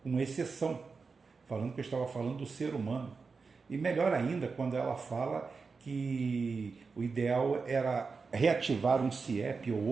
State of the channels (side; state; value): left; quieter; 4.7 dB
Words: com exceção, falando que eu estava falando do ser humano. E melhor ainda, quando ela fala que o ideal era reativar um CIEP ou